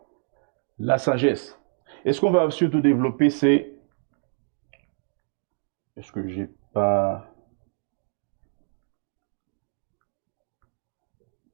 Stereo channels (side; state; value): left; silent; 59 dB below the other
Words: la sagesse. Et ce qu'on va surtout développer, c'est... Est-ce que j'ai pas...